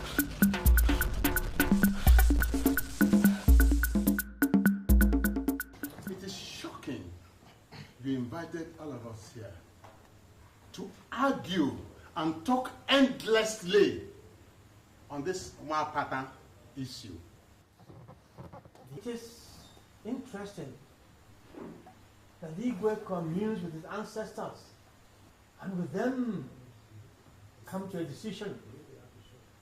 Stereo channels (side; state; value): both; identical; correlation 1.00